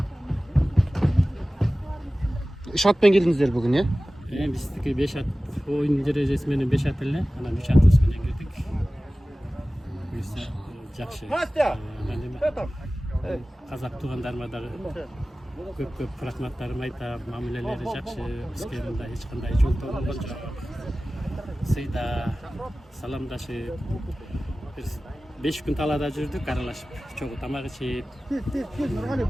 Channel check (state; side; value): normal; both; correlation 0.97